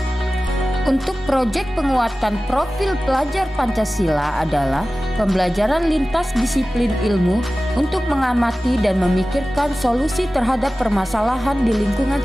Untuk proyek penguatan profil pelajar Pancasila adalah pembelajaran lintas disiplin ilmu untuk mengamati dan memikirkan solusi terhadap permasalahan di lingkungan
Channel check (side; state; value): both; normal; correlation 0.96